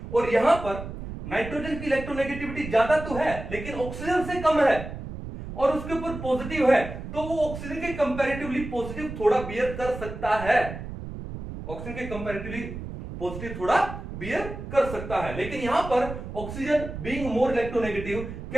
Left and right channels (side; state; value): right; noise; rumble, 9 dB below the sound